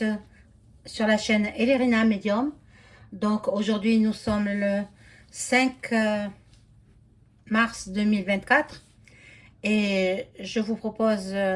sur la chaîne Elerina Medium. Donc aujourd'hui nous sommes le 5 mars 2024 et je vous propose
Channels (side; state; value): both; identical; correlation 1.00